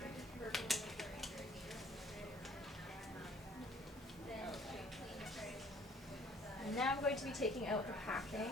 And now I'm going to be taking out the packing.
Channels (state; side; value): normal; both; correlation 0.58